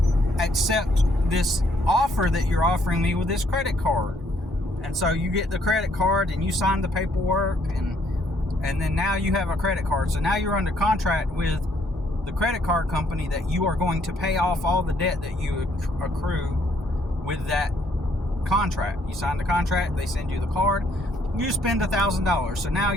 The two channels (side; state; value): both; normal; correlation 0.68